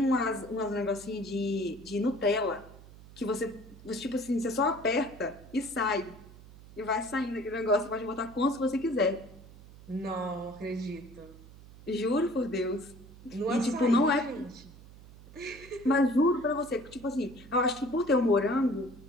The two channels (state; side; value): noise; right; hum, 19 dB below the sound